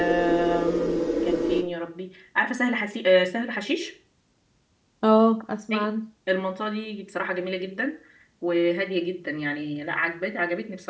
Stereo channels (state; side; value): identical; both; correlation 1.00